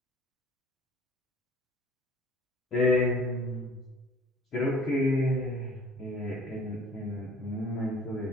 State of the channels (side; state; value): both; normal; correlation 0.51